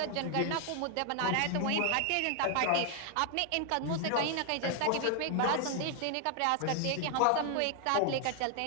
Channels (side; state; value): both; different; correlation 0.00